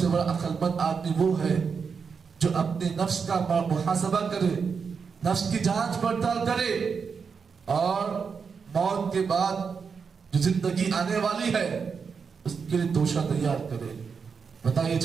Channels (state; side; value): quieter; left; 5.8 dB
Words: بڑا عقل مند آدمی وہ ہے جو اپنے نفس کا محاسبہ کرے، نفس کی جانچ پڑتال کرے اور موت کے بعد جو زندگی آنے والی ہے اس کے لیے توشہ تیار کرے۔ بتائیے